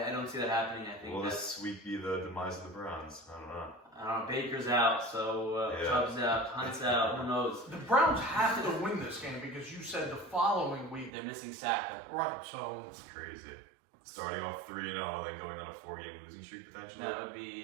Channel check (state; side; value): drops out; left; at 11.1 s